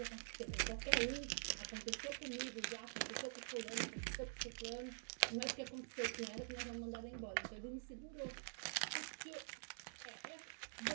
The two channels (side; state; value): left; silent; digital silence